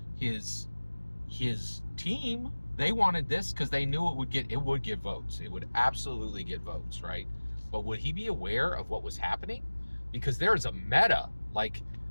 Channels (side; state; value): both; inverted; correlation -1.00